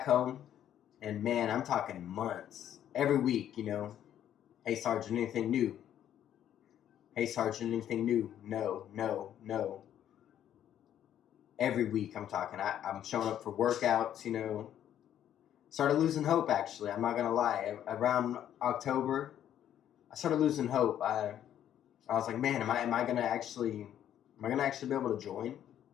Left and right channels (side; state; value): right; quieter; 10.6 dB